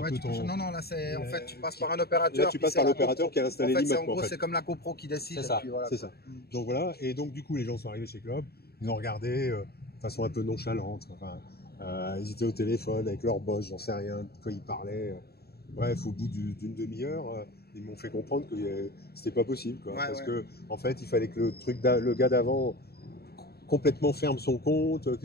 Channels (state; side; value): late; right; 0.46 ms